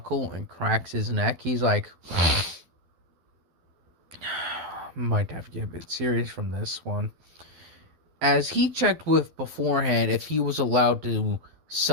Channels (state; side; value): late; left; 12 ms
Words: and cracks his neck, he's like, might have to get a bit serious from this one. As he checked with beforehand if he was allowed to